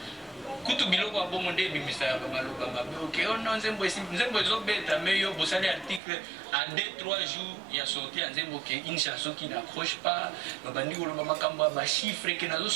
kutu biloko ya bongo nde ebimisaka bamaloba mabe. Ok ono nzembo ezobeta me yo bosali article en 2-3 jours ya sorti ya nzembo ke une chanson qui n'accroche pas babandi koloba makambo ya bachiffre ke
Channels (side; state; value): left; drops out; at 6.0 s